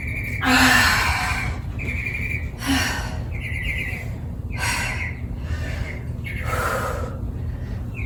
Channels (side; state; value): both; identical; correlation 1.00